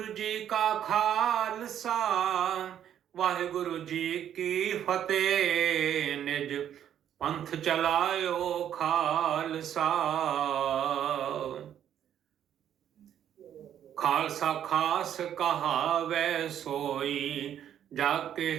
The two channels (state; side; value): quieter; left; 10.0 dB